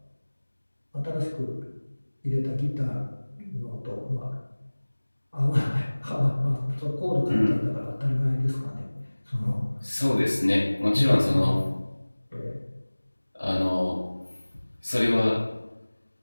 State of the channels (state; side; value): inverted; both; correlation -1.00